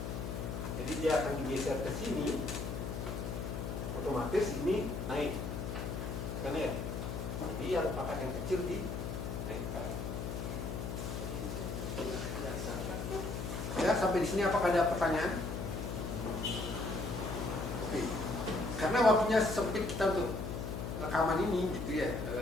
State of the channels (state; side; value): noise; left; hum, 4 dB below the sound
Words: Jadi dia akan digeser ke sini, otomatis ini naik, kan ya. Jadi yang pangkat yang kecil dinaikkan. Ya, sampai di sini apakah ada pertanyaan? Oke. Karena waktunya sempit kita untuk rekaman ini gitu ya.